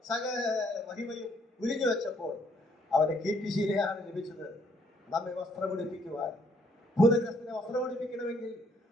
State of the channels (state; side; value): normal; both; correlation 0.67